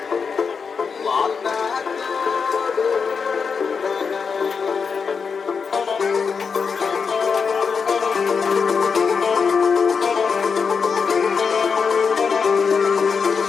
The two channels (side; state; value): right; quieter; 5.7 dB